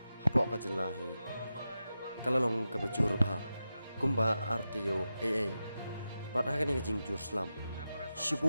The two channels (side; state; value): both; inverted; correlation -0.91